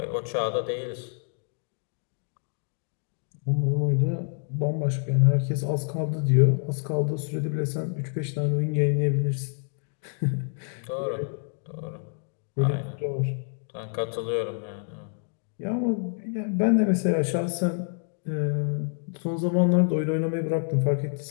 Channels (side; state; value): right; silent; 57 dB below the other